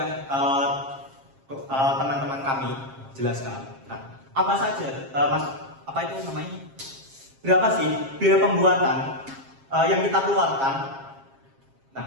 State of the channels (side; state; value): left; late; 7.4 ms